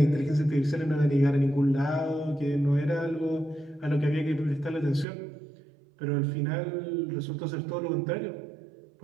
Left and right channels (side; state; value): left; drops out; at 5.1 s